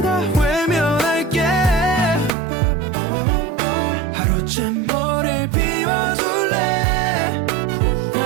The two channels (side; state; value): left; drops out; at 2.3 s